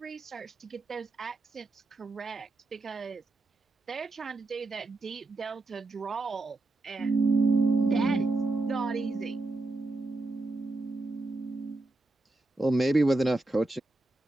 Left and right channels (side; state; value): left; quieter; 3.1 dB